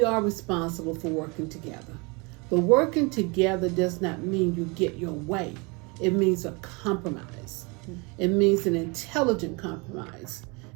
are responsible for working together. But working together does not mean you get your way. It means a compromise. It means an intelligent compromise,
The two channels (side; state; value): left; quieter; 29.0 dB